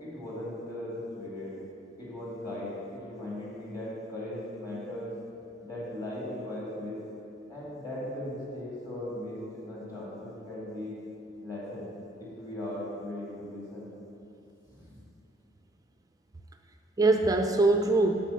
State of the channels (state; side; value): normal; both; correlation 0.61